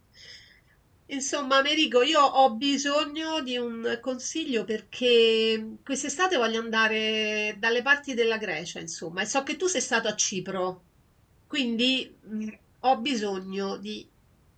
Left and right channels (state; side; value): identical; both; correlation 1.00